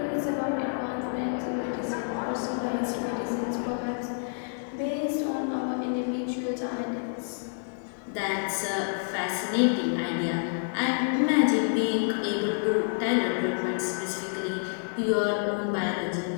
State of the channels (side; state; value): right; silent; digital silence